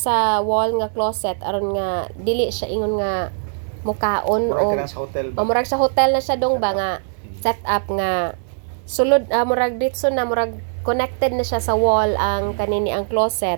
wall nga closet aron nga dili siya ingon nga mukaon o murag sa hotel na siya dong ba nga set up nga sulod murag ditso na murag connected na siya sa wall ang kanini ang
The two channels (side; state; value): left; silent; digital silence